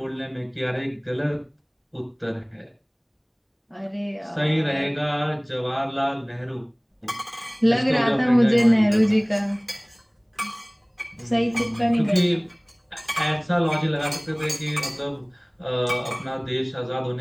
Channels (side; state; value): both; identical; correlation 1.00